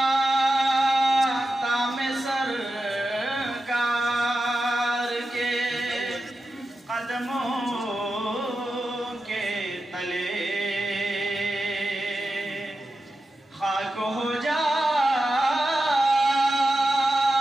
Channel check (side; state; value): both; normal; correlation 0.91